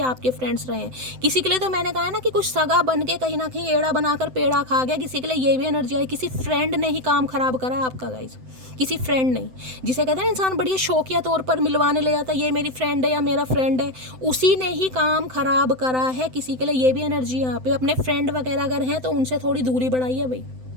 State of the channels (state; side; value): late; left; 7.8 ms